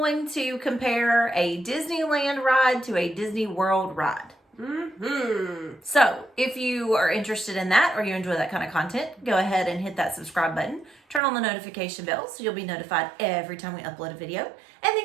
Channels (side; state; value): left; drops out; at 11.2 s